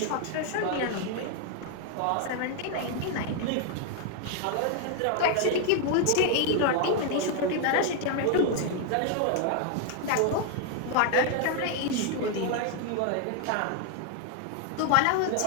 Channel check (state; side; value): different; both; correlation 0.00